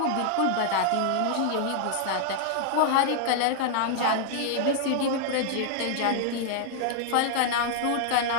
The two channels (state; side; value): different; both; correlation 0.00